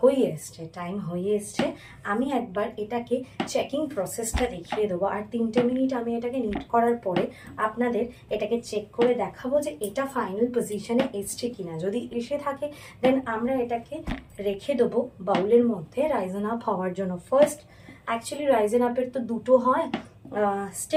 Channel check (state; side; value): identical; both; correlation 1.00